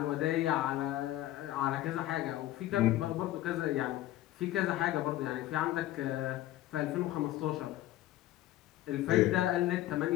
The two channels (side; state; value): right; quieter; 14.9 dB